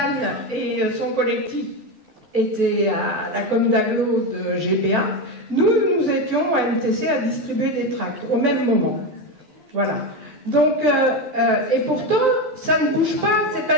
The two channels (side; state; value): left; late; 12 ms